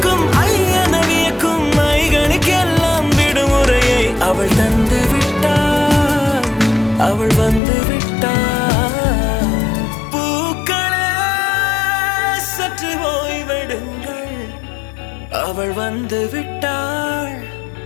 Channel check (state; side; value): drops out; right; at 7.6 s